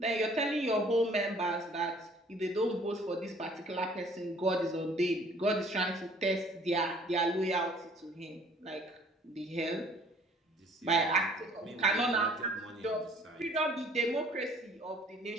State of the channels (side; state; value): both; normal; correlation 0.56